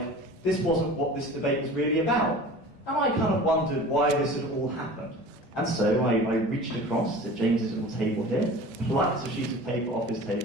this wasn't what this debate was really about. And I kind of wondered why this had all happened. And so I reached across to James's little table here, plucked a sheet of paper off his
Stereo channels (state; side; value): normal; both; correlation 0.40